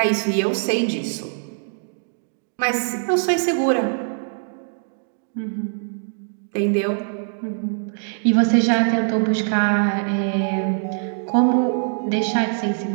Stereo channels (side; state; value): left; silent; digital silence